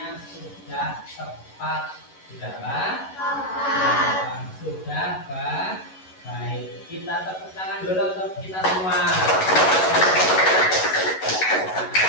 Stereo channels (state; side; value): late; right; 11 ms